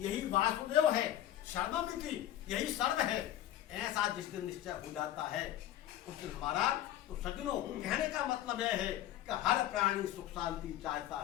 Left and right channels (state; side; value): quieter; right; 12.7 dB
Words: वासुदेव है। सर्वमिति, यही सर्व है। ऐसा जिस दिन निश्चय हो जाता है उस दिन हमारा, तो सज्जनों कहने का मतलब यह है कि हर प्राणी सुख शांति चाहता